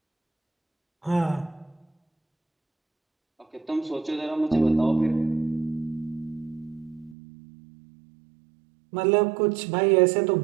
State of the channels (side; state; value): left; drops out; at 7.2 s